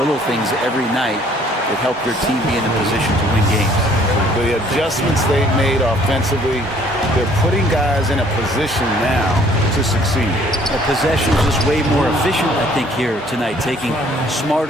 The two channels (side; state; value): both; normal; correlation 0.59